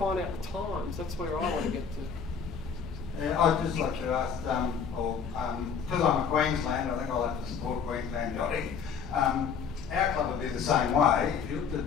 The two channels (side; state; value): right; quieter; 6.5 dB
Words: out the times. That's where I want to get to. I'd just like to ask, because I'm a Queenslander, I think I'll have to support Queensland yachting. Our club would be the same way. If you looked at a